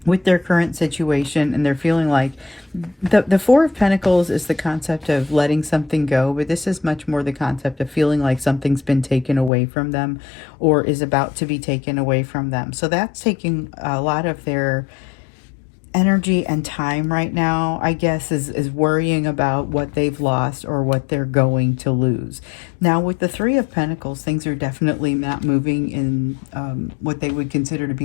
with their current situation, and they're feeling like the Four of Pentacles is the concept of letting something go, but this is much more the concept of feeling like something's been taken away from them or is about to be taken away from them. So that's taking a lot of their energy and time right now, I guess, is worrying about what they've lost or what they're going to lose. Now, with the Three of Pentacles, things are definitely not moving in what they would consider to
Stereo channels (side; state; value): right; drops out; at 9.5 s